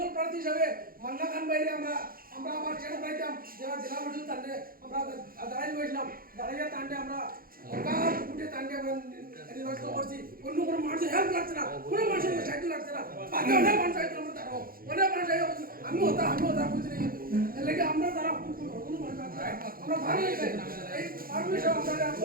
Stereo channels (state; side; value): late; left; 0.42 ms